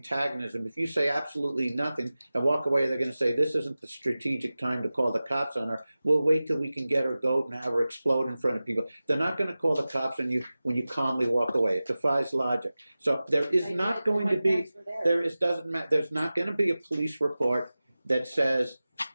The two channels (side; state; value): both; inverted; correlation -0.96